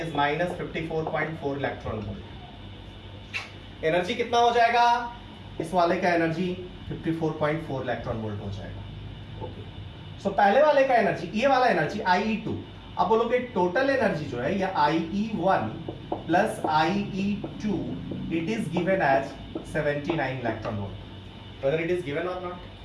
-54.4 electron volt. Energy कितना हो जाएगा? इस वाले का एनर्जी 54.4 इलेक्ट्रॉन वोल्ट हो जाएगा। ओके, सो पहले वाले का एनर्जी, ये वाला एनर्जी IE2। अब बोलोगे टोटल एनर्जी जो है, या IE1 plus IE2, it is given as 79 electron volt. Whether it is given or not?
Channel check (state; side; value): identical; both; correlation 1.00